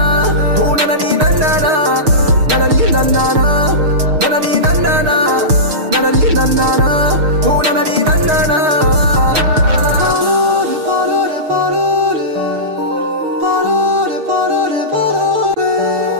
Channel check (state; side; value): late; left; 6.5 ms